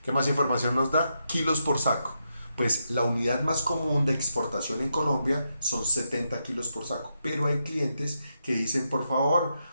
¿Qué más información nos da? Kilos por saco. Pues la unidad más común de exportación en Colombia son 70 kilos por saco, pero hay clientes que dicen, por favor,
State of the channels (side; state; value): both; inverted; correlation -0.83